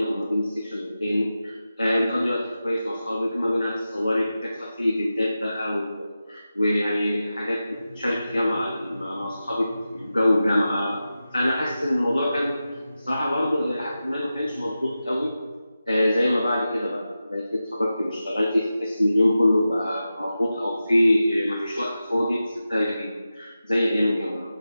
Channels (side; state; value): both; inverted; correlation -0.93